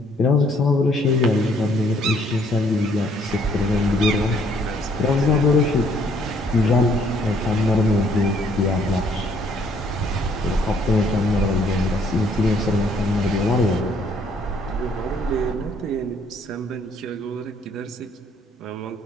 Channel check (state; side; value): normal; both; correlation 0.64